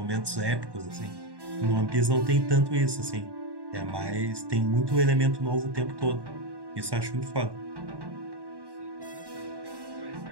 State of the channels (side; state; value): left; late; 1.1 ms